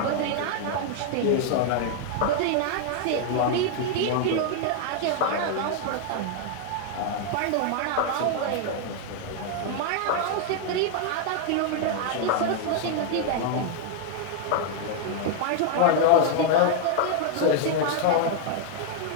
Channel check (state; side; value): different; both; correlation 0.00